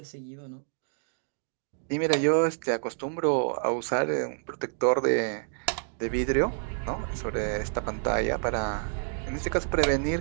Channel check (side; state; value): left; silent; digital silence